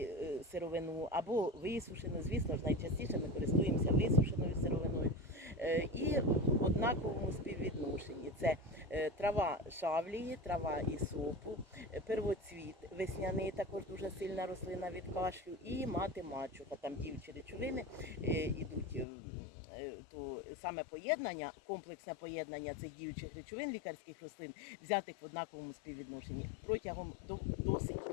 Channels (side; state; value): right; drops out; at 19.1 s